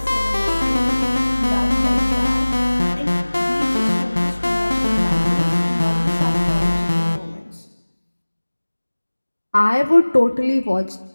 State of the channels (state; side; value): inverted; both; correlation -1.00